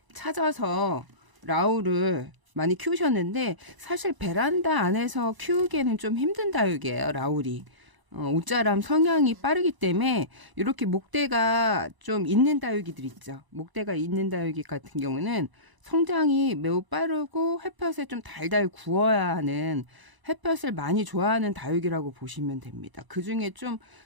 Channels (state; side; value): late; left; 1.0 ms